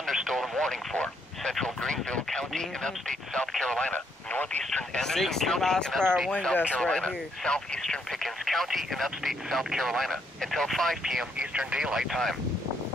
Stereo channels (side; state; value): both; normal; correlation 0.74